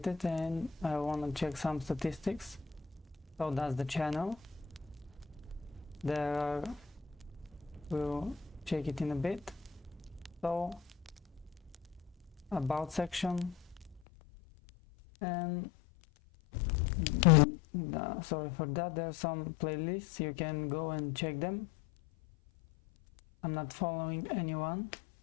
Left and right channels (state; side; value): drops out; right; at 14.0 s